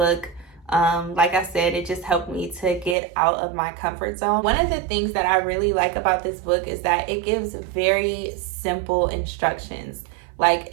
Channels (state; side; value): drops out; left; at 3.0 s